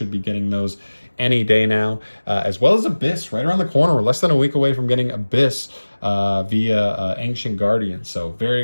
be getting those any day now, as well as Abyss right around the corner. We're less than a week away from getting Abyss via Ancient Guardian. So very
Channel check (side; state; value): both; inverted; correlation -1.00